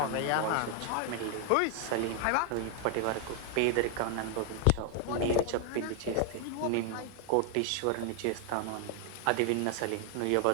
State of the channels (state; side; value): different; both; correlation 0.00